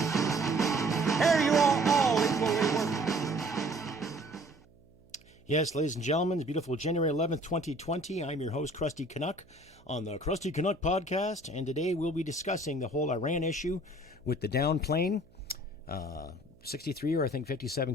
Here you are all equally worthy. Yes, ladies and gentlemen, it's beautiful January 11th, 2020. I'm your host, Krusty Canuck, on the Krusty Canuck podcast, and today we'll be discussing the whole Iran issue with the down plane. 63 or I think 57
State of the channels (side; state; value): right; noise; hum, 28 dB below the sound